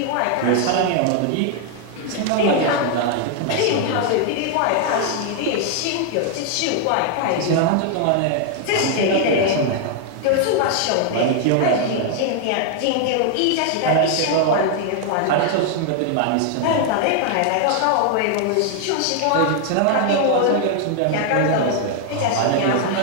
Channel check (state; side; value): different; both; correlation 0.00